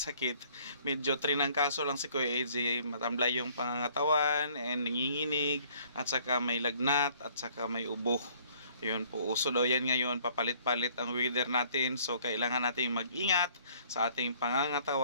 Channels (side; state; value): both; inverted; correlation -0.59